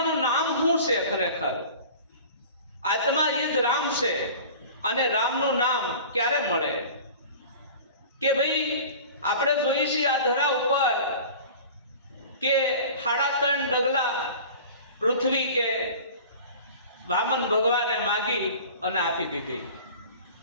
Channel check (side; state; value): both; inverted; correlation -0.40